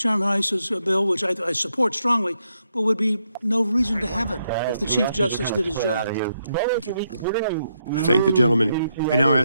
Iss's bill, which I support strongly, but would be no reason to have it if the Chief Justice did his job. I thank the gentleman. I now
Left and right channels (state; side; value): inverted; both; correlation -0.79